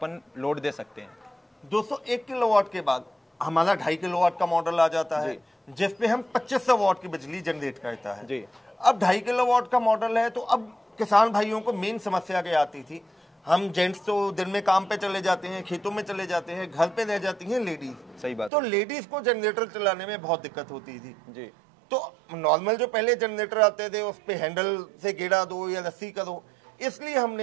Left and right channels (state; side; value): drops out; left; at 18.5 s